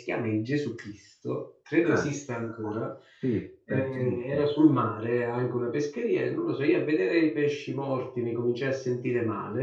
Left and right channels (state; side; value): identical; both; correlation 1.00